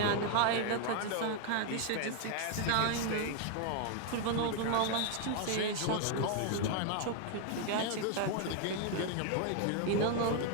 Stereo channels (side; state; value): both; different; correlation 0.00